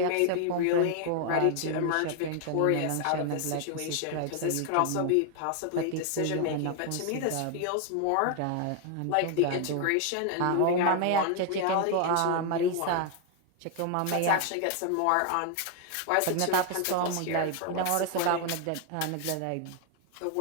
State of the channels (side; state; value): both; different; correlation 0.00